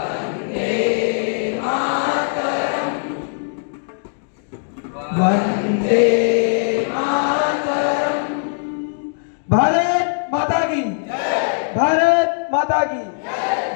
मातरं, वन्दे मातरं। भारत माता की, भारत माता की,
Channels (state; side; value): silent; right; digital silence